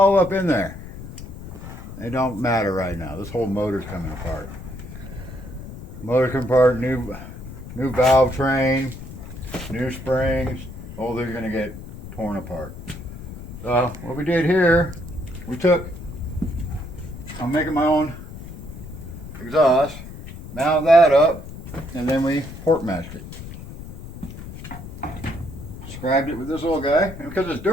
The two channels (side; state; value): left; noise; rumble, 12 dB below the sound